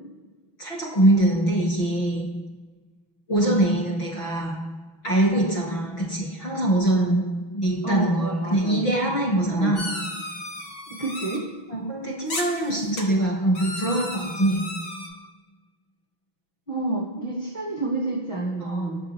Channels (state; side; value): late; right; 6.1 ms